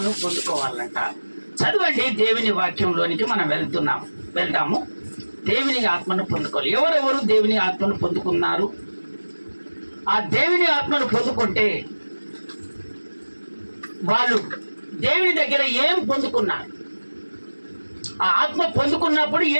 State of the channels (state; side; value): inverted; both; correlation -1.00